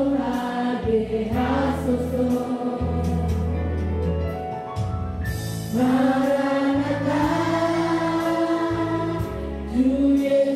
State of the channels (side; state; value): both; identical; correlation 1.00